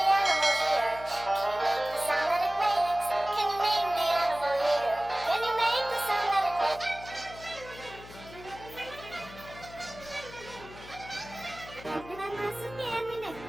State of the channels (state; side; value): noise; left; hum, 17 dB below the sound